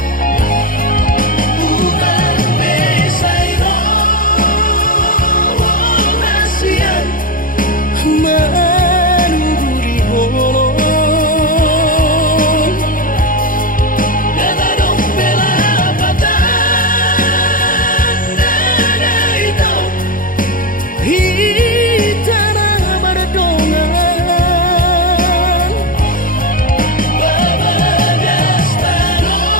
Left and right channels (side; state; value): right; late; 0.40 ms